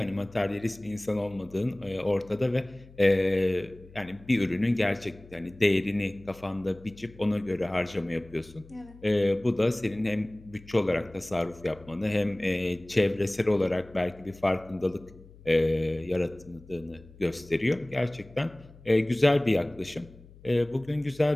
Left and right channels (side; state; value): left; noise; hum, 22 dB below the sound